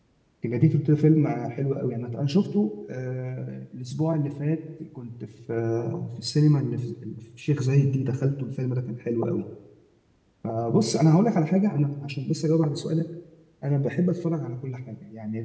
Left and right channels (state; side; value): identical; both; correlation 1.00